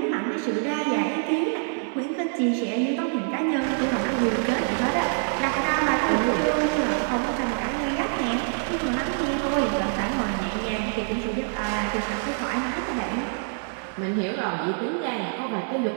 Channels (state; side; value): silent; left; 61 dB below the other